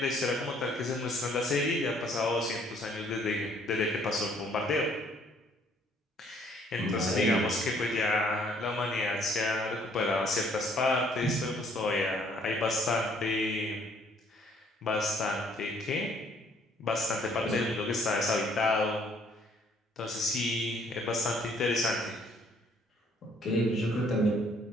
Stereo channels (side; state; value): both; normal; correlation 0.62